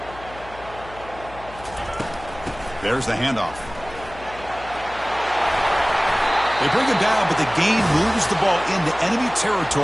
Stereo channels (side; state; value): left; noise; hum, 17 dB below the sound